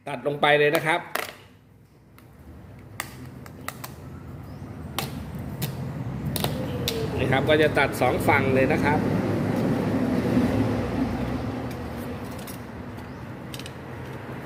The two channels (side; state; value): both; identical; correlation 1.00